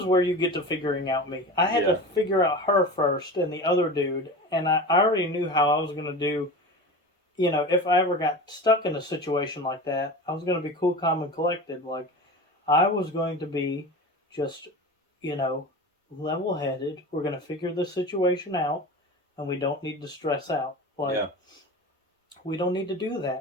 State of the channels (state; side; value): normal; both; correlation 0.31